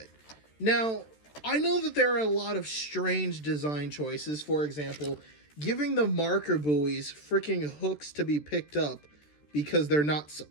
Now, I know that there are a lot of strange design choices. For example, giving the marker buoys freaking hooks to be picked up because they're not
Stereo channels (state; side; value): late; right; 13 ms